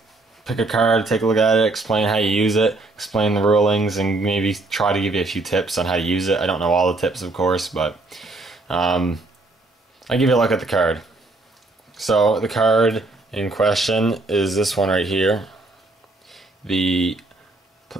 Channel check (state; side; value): quieter; left; 3.1 dB